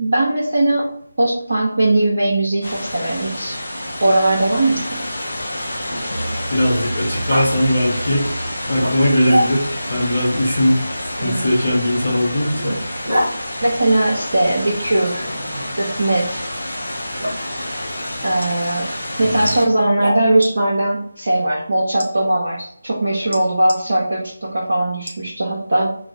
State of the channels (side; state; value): both; inverted; correlation -0.92